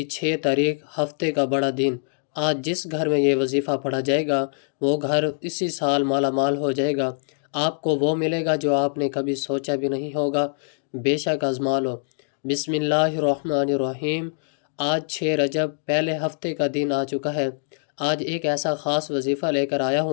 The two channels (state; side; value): silent; right; digital silence